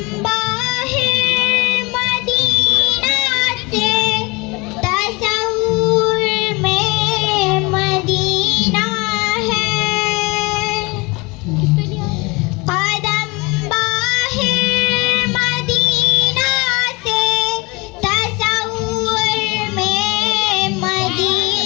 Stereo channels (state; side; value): quieter; right; 26.1 dB